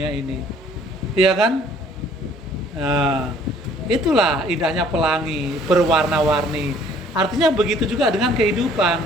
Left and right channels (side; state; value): both; normal; correlation 0.57